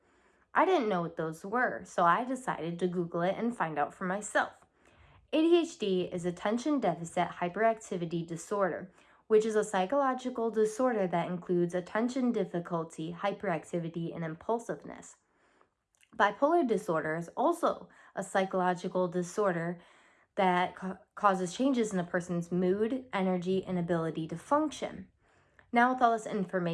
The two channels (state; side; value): identical; both; correlation 1.00